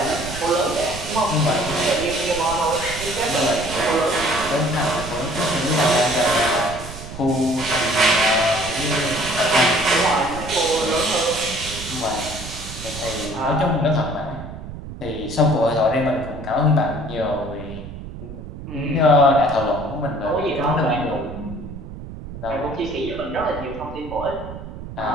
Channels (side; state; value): right; noise; rumble, 11 dB below the sound